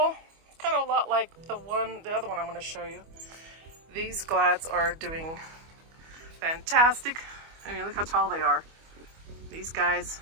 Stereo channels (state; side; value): late; left; 25 ms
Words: It's kind of a lot like the other one I'm going to show you. These glads are doing fantastic. I mean, look how tall they are. These guys,